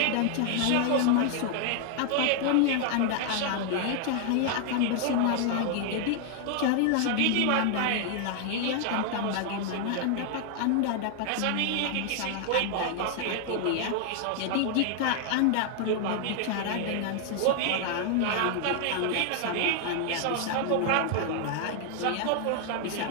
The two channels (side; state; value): both; different; correlation 0.00